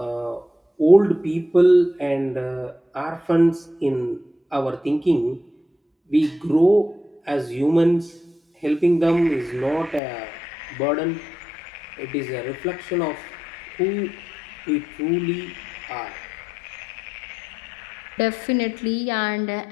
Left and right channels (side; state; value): right; drops out; at 10.0 s